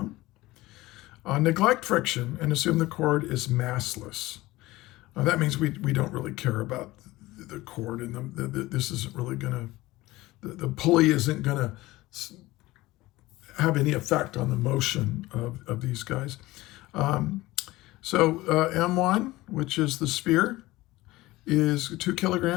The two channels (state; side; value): quieter; right; 18.8 dB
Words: Neglect friction and assume the cord is massless. That means we don't really care about the cord, and this isn't really going to, the pulley isn't going to have any effect on the motion of these guys. M1, which is the sphere, is 2